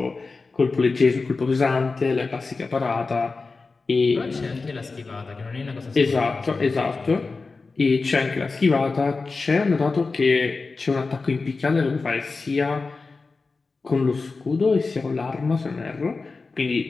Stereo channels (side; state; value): right; quieter; 4.0 dB